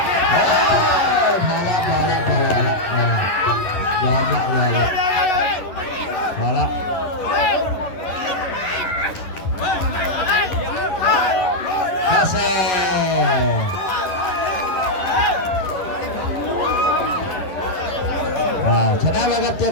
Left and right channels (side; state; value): right; late; 11 ms